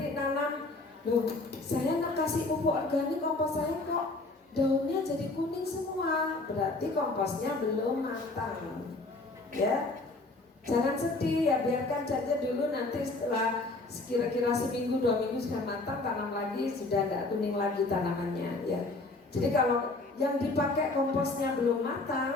nanam, loh saya nak kasih pupuk organik kompos saya kok daunnya jadi kuning semua, berarti komposnya belum matang. Ya. Jangan sedih ya, biarkan saja dulu, nanti setelah kira-kira seminggu 2 minggu sudah matang, tanam lagi sudah tidak kuning lagi tanamannya ya. Jadi kalau yang dipakai komposnya belum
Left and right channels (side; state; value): right; quieter; 3.2 dB